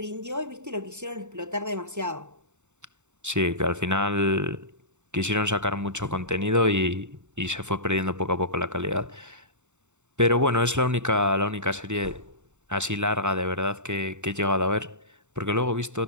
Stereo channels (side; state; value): left; late; 0.84 ms